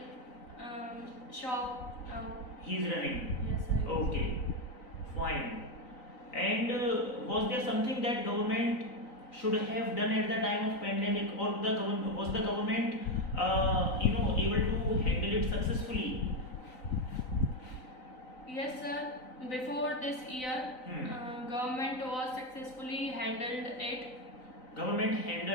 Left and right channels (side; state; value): right; late; 3.9 ms